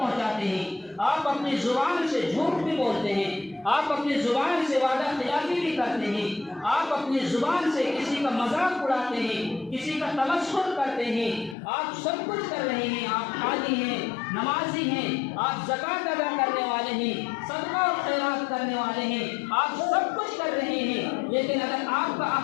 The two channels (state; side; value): drops out; right; at 11.6 s